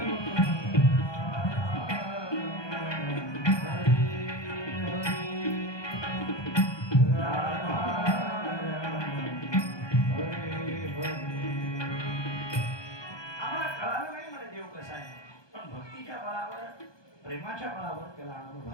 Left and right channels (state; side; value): late; right; 1.2 ms